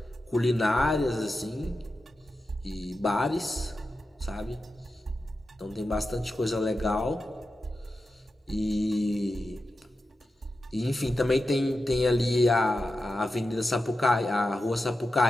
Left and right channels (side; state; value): both; normal; correlation 0.91